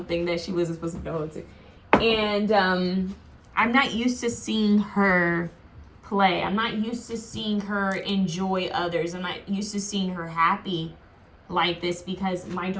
that she wasn't supposed to get a hold to. And I'm not used to seeing her play. I'm not used to seeing her enjoy others. I'm not used to seeing her happy like this because my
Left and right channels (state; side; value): identical; both; correlation 1.00